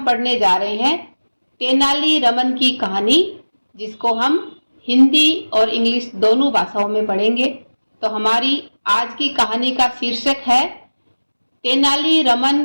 पढ़ने जा रहे हैं तेनाली रमन की कहानी, जिसको हम हिंदी और इंग्लिश दोनों भाषाओं में पढ़ेंगे। तो हमारी आज की कहानी का शीर्षक है तेनाली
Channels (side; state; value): both; inverted; correlation -1.00